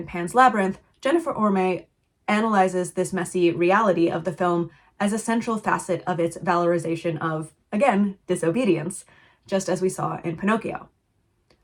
Pan's Labyrinth, Jennifer Orme analyzes this messy reality of the film as a central facet of its valorization of, again, disobedience, just as we saw in Pinocchio.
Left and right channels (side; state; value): both; identical; correlation 1.00